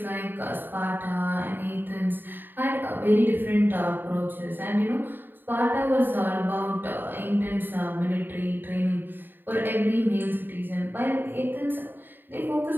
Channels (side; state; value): left; late; 0.093 ms